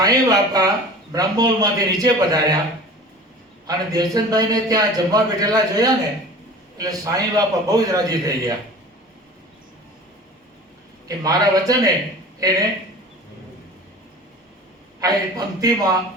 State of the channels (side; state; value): both; normal; correlation 0.40